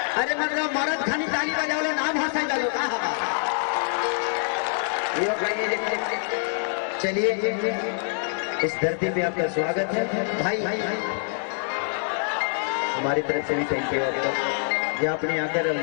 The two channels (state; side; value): silent; right; digital silence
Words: अरे मतलब मरद खानी ताली बजाओ, नाम हंसा डालो कहा। चलिए इस धरती पे आपका स्वागत है भाई। हमारी तरफ से भी थैंक यू आपको, ये आपने